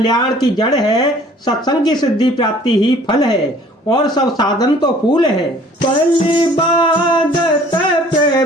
की जड़ है। सत्संग की सिद्धि प्राप्ति ही फल है और सब साधन तो फूल है। पल्ली बाधत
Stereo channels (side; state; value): both; normal; correlation 0.54